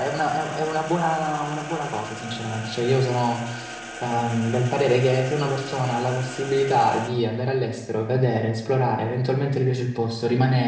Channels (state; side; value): identical; both; correlation 1.00